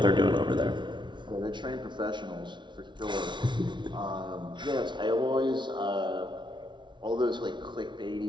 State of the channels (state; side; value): late; left; 0.23 ms